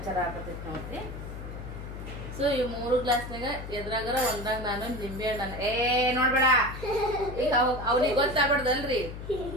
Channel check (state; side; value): noise; left; hum, 9 dB below the sound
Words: ಆಗತೈತಿ ನೋಡ್ರಿ. ಸೊ ಈ 3 ಗ್ಲಾಸ್ನಾಗ ಎದ್ರಾಗರ ಒಂದಾಗ ನಾನು ನಿಂಬೆ ಹಣ್ಣು ನೋಡ್ಬೇಡ. ಈಗ ಅವ್ನಿಗೆ ಗೊತ್ತಾಗ್ಬಾರ್ದಲ್ರಿ,